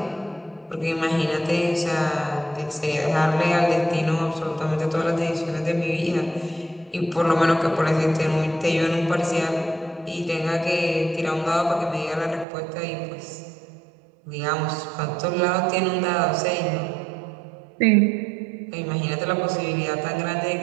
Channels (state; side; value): drops out; left; at 12.5 s